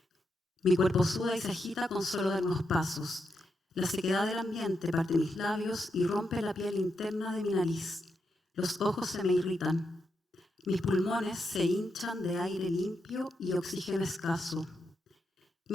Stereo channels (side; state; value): both; normal; correlation 0.84